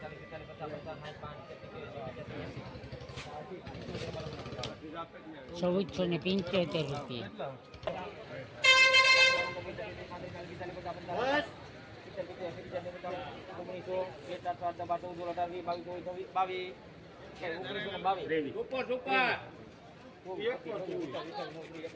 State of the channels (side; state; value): both; identical; correlation 1.00